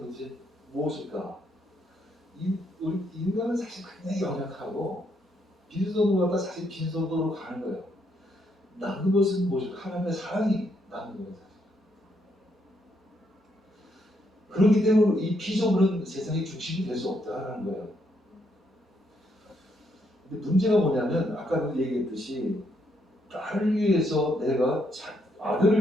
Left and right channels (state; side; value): normal; both; correlation 0.75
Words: 무엇일까? 우리 인간은 사실 굉장히 연약하고 빈손으로 갔다 사실 빈손으로 가는 거예요. 남는 것은 무엇일까? 하나님의 사랑이 남는 거예요. 사실. 그렇기 때문에 이 피조물은 세상의 중심이 될 수 없다라는 거예요. 근데 문제가 뭐냐면 아까도 얘기했듯이 딸을 위해서